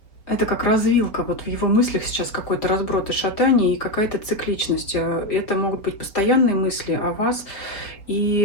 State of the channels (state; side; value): late; right; 4.5 ms